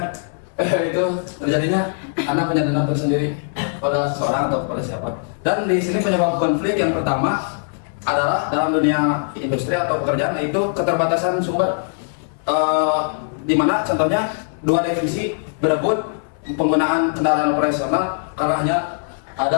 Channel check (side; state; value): right; silent; 65 dB below the other